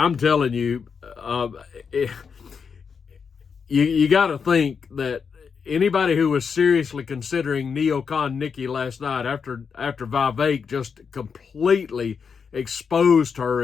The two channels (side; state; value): right; quieter; 6.1 dB